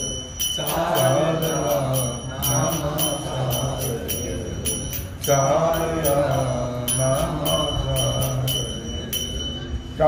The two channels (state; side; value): identical; both; correlation 1.00